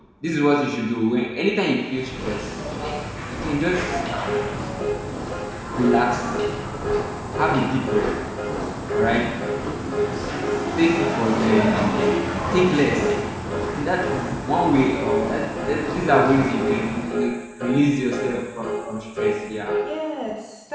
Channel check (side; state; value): both; identical; correlation 1.00